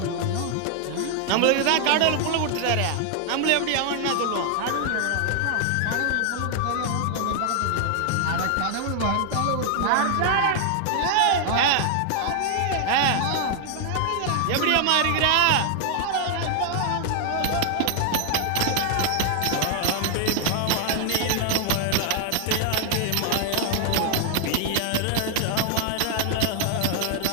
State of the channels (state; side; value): different; both; correlation 0.00